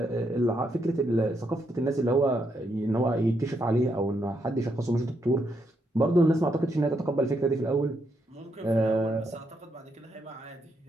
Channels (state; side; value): normal; both; correlation 0.78